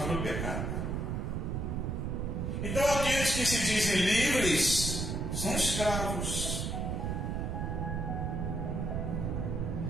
do pecado. Então aqueles que se dizem livres são escravos.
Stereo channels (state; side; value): noise; right; rumble, 1 dB below the sound